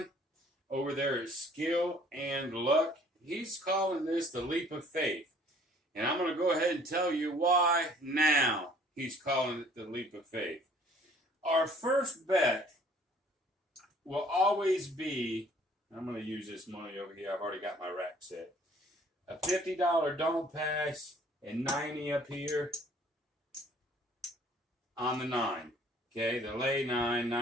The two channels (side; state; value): both; normal; correlation 0.56